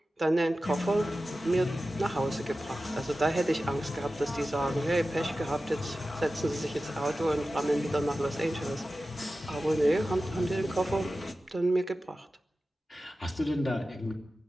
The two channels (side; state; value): both; normal; correlation 0.94